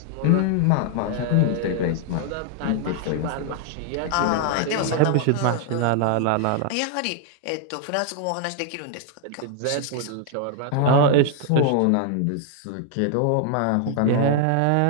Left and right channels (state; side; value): different; both; correlation 0.00